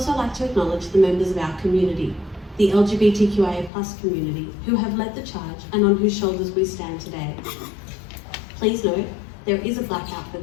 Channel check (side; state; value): right; drops out; at 3.7 s